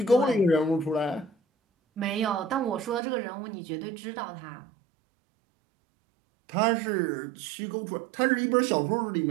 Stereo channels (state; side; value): drops out; left; at 3.0 s